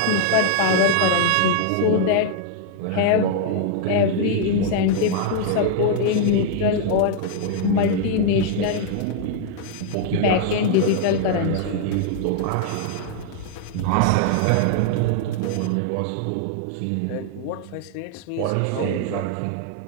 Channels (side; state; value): both; different; correlation 0.00